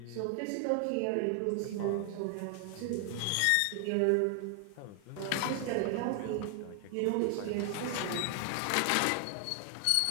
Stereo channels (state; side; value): different; both; correlation 0.00